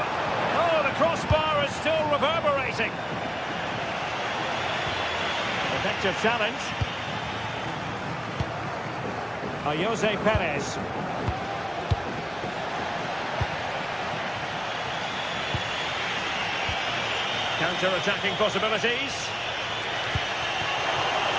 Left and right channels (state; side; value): identical; both; correlation 1.00